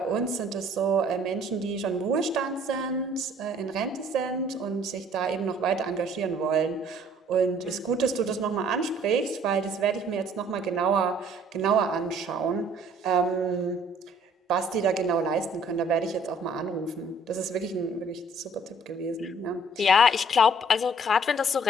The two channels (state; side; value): normal; both; correlation 0.57